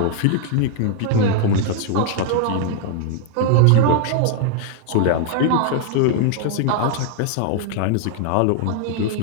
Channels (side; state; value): both; different; correlation 0.00